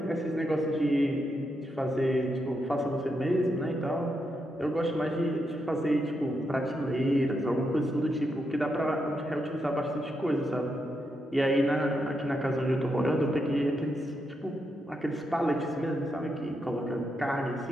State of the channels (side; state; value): both; normal; correlation 0.83